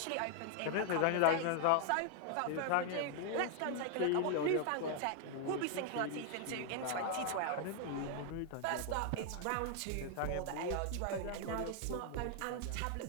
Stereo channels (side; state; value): both; different; correlation 0.00